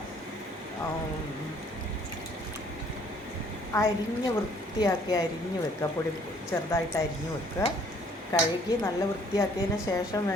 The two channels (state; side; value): normal; both; correlation 0.60